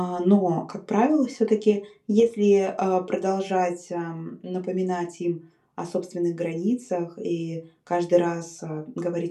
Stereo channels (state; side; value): identical; both; correlation 1.00